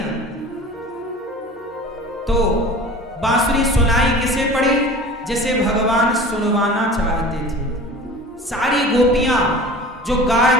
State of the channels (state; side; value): normal; both; correlation 0.40